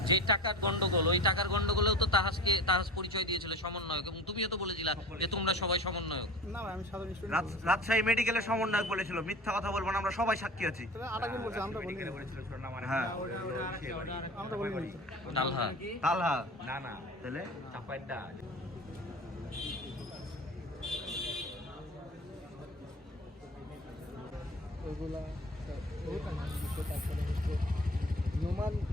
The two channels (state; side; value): normal; both; correlation 0.37